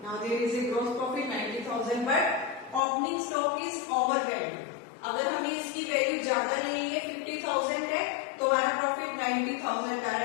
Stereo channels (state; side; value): drops out; right; at 2.8 s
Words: Now there is a gross profit 90,000, but opening stock is overvalued. अगर हमें इसकी value ज्यादा लेनी है 50,000 है तो हमारा profit 90,000 का